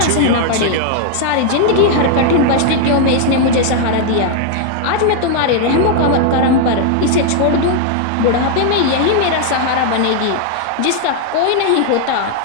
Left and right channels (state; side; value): different; both; correlation 0.00